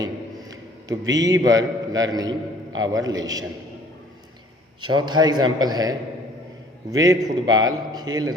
तो be verb learning our lesson. चौथा एग्जाम्पल है वे फुटबॉल खेल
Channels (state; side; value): normal; both; correlation 0.55